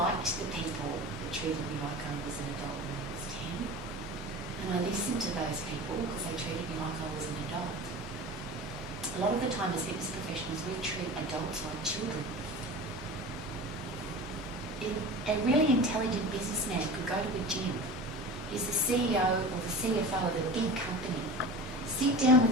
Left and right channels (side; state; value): both; normal; correlation 0.34